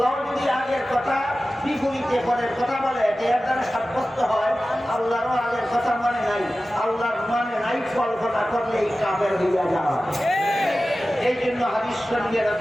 যদি আগের কথা বিপরীতে পরের কথা বলে এর দ্বারা সাব্যস্ত হয় আল্লাহরও আগের কথা মনে নাই, আল্লাহর মানে নাই, কল্পনা করলেই কাফের হইয়া যাওয়া। এই জন্য হাদিস শরীফে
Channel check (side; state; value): both; normal; correlation 0.95